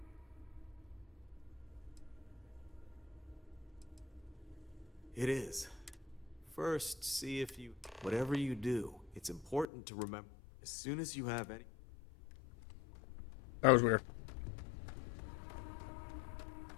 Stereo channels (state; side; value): drops out; right; at 9.7 s